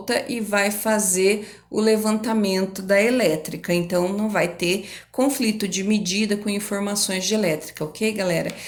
e vai fazer o levantamento da elétrica. Então, não vai ter conflito de medida com informações de elétrica, ok, galera?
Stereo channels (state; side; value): identical; both; correlation 1.00